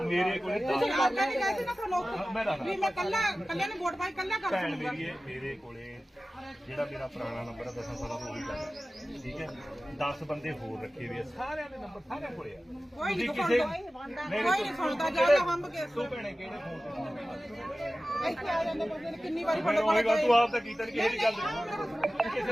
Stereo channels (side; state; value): both; normal; correlation 0.95